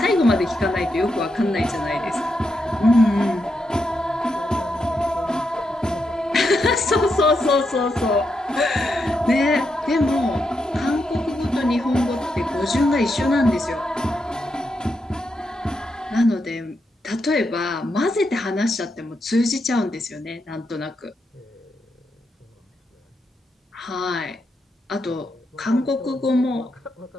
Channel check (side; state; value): both; normal; correlation 0.83